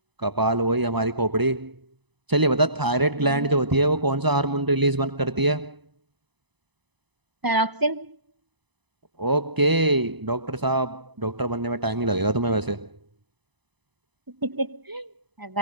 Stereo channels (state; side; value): late; left; 1.0 ms